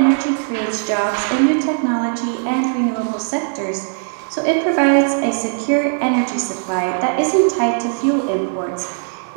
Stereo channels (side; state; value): left; silent; 66 dB below the other